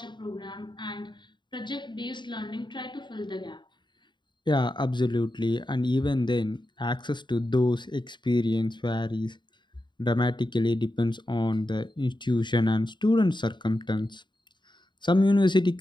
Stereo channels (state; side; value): late; right; 0.22 ms